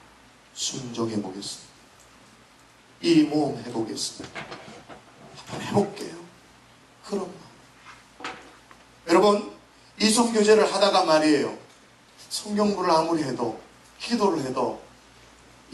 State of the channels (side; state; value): both; identical; correlation 1.00